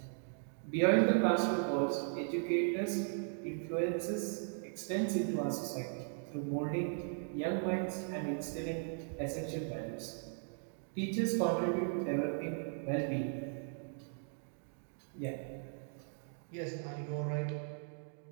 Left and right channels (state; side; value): silent; left; 53 dB below the other